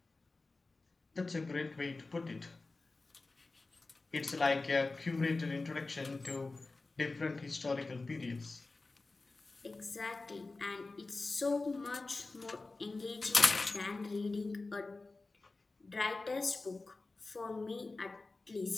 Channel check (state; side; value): quieter; right; 3.5 dB